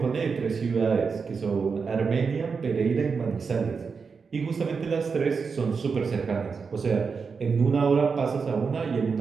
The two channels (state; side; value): quieter; left; 5.3 dB